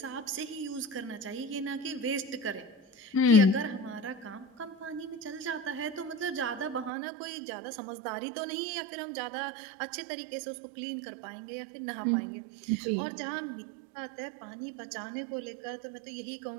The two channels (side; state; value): left; drops out; at 6.9 s